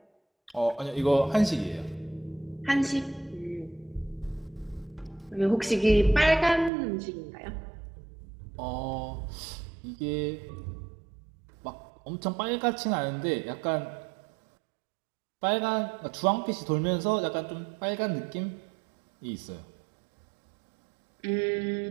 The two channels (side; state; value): left; drops out; at 6.7 s